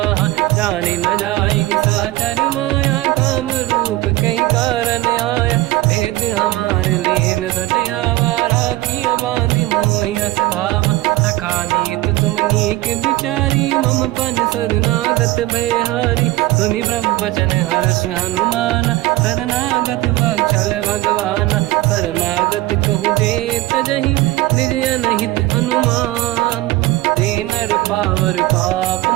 जाने न जाएगी साचर माया, काम रूप कई कारण आया। भेद हमार लेन सटियावा, राखी हमारी मोहियस भावा। सखा नीत तुम नीक विचारी, मम पन शरणागत भयहारी। सुनि प्रभु वचन हर्ष हनुमान, शरणागत बक्षल भगवान। शरणागत कहूँ जे तजहि, निज अनहित अनुमान। ते नर पावर पाप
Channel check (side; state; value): left; quieter; 17.9 dB